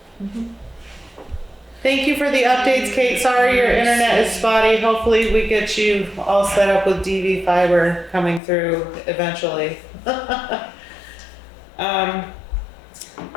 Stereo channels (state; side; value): drops out; right; at 8.4 s